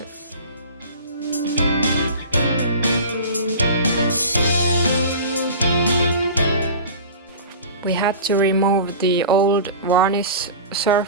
We had to remove the old varnish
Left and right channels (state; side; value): inverted; both; correlation -0.36